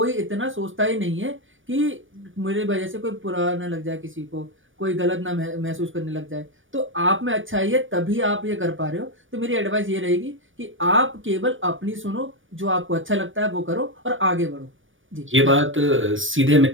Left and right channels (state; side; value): late; left; 0.57 ms